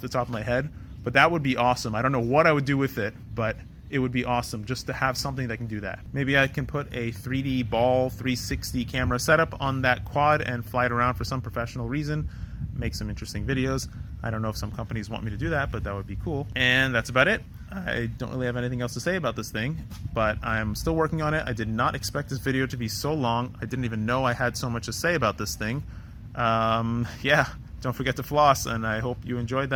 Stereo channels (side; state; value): both; identical; correlation 1.00